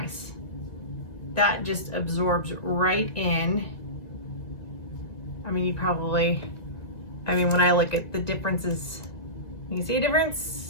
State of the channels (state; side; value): late; right; 1.9 ms